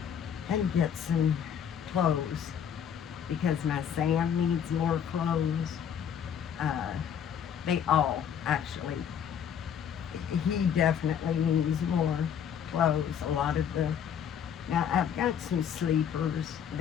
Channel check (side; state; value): right; quieter; 8.4 dB